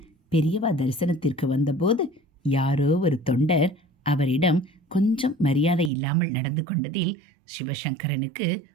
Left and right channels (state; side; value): drops out; left; at 5.9 s